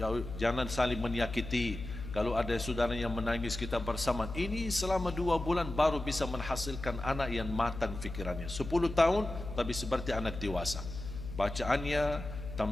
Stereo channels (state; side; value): noise; left; hum, 9 dB below the sound